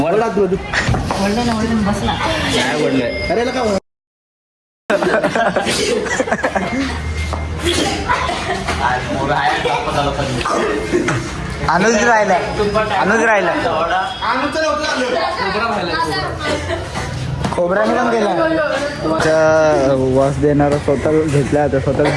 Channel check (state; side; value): identical; both; correlation 1.00